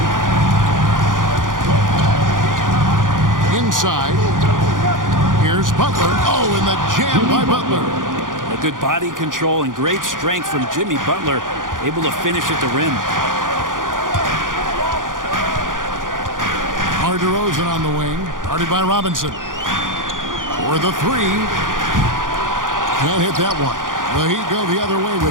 Inside, here's Butler. Oh, and the jam by Butler. A good body control and great strength from Jimmy Butler, able to finish at the rim. DeRozan on the wing, guarded by Robinson. For the 3. Can't hit that one. The Heat go the other way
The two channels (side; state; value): left; late; 0.89 ms